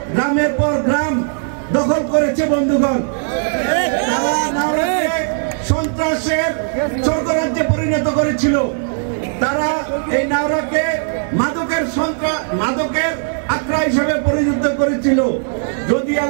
গ্রামের পর গ্রাম দখল করেছে। বন্ধুগণ, তারা নাওরাকে সন্ত্রাসের স্বর্গরাজ্যে পরিণত করেছিল। তারা এই নাওরাকে মাদকের আখড়া হিসেবে পরিণত করেছিল। যদি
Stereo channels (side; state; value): left; silent; 68 dB below the other